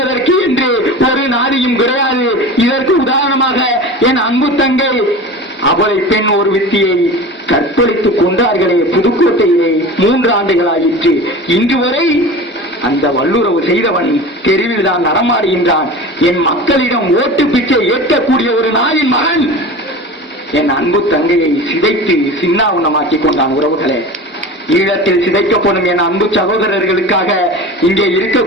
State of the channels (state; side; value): normal; both; correlation 0.33